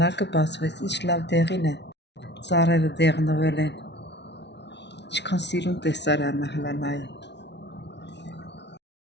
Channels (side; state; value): right; late; 0.50 ms